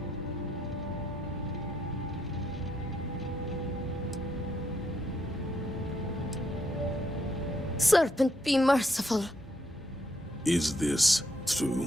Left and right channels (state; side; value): normal; both; correlation 0.75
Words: Serpent, be merciful. Is this